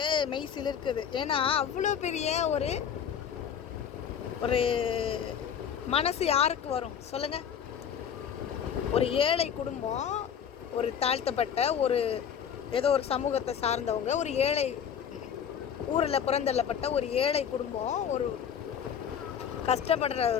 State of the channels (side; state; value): right; quieter; 8.1 dB